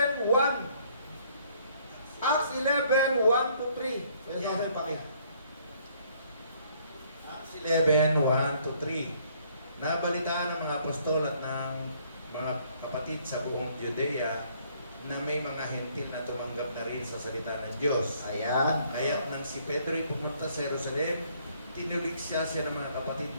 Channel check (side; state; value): both; inverted; correlation -0.64